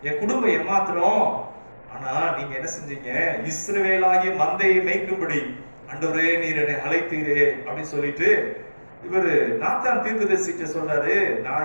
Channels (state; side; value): inverted; both; correlation -1.00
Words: என் குடும்பம் எம்மாத்திரம். ஆனா நீங்க என்ன செஞ்சீங்க, இஸ்ரவேலாகிய மந்தையை மேய்க்கும்படி ஆண்டவரே நீர் என்னை அழைத்தீரே அப்படின்னு சொல்லிட்டு இவரு நாத்தான் தீர்க்கதரிசிட்ட சொல்றாரு,